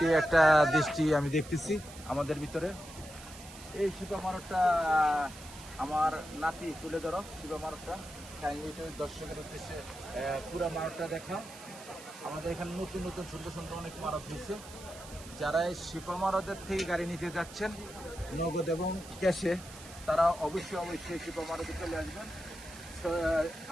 একটা দৃষ্টি আমি দেখতেছি আমাদের ভিতরে। এই শিপা মারটটা আমার নাতি, তুলে ধরো শিপা মারটটা দর্শকের উদ্দেশ্যে। পুরা মারটটা দেখা, আমাদের এখানে নতুন নতুন সুন্দর সুন্দর অনেক মারত হয়েছে। যারা এই শিপা মারতের থেকে গাড়ি নিতে যাচ্ছেন নগদ এবং ক্যাশে, তারা অবশ্যই শিপা মারতে চলে আসবেন।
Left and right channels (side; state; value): right; noise; hiss, 16 dB below the sound